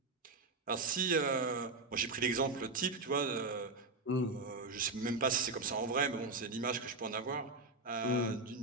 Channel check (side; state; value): left; quieter; 3.4 dB